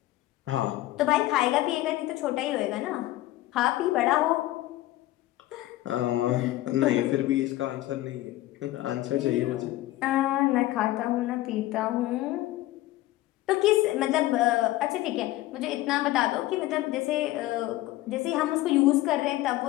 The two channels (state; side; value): quieter; right; 16.2 dB